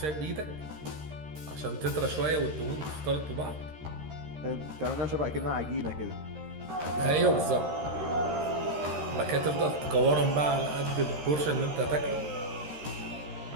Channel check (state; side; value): late; left; 13 ms